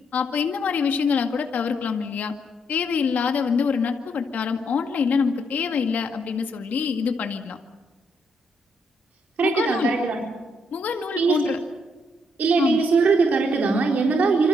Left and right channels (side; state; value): both; normal; correlation 0.74